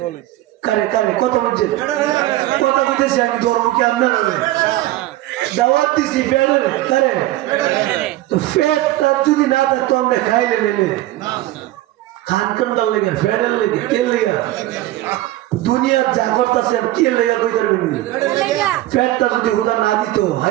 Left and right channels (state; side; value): quieter; left; 16.0 dB